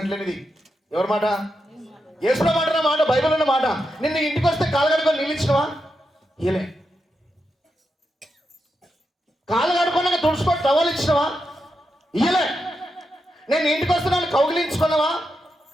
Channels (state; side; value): normal; both; correlation 0.86